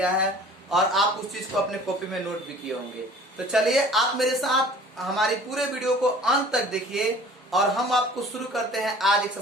है और आप उस चीज को अपने कॉपी में नोट भी किए होंगे। तो चलिए आप मेरे साथ हमारी पूरे वीडियो को अंत तक देखिए और हम आपको शुरू करते हैं आज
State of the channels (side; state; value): both; normal; correlation 0.47